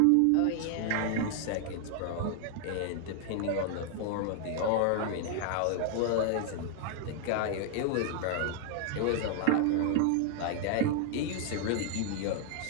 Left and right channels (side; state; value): both; different; correlation 0.00